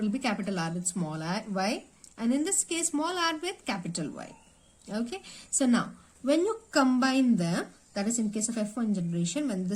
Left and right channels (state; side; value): identical; both; correlation 1.00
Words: be capital R with small y. And in this case, small r with capital Y. Okay, so now, when you combine them, that is in case of F1 generation, when